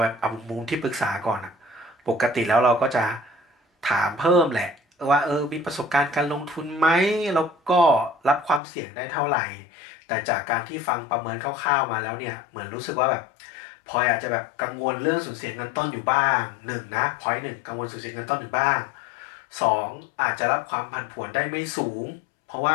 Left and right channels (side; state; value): right; drops out; at 8.6 s